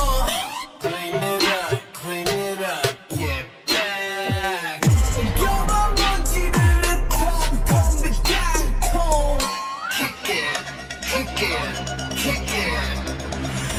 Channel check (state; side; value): identical; both; correlation 1.00